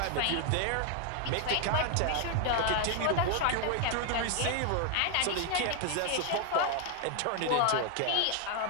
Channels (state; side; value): different; both; correlation 0.00